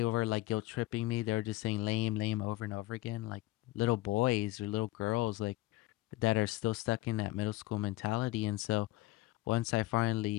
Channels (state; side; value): quieter; right; 17.7 dB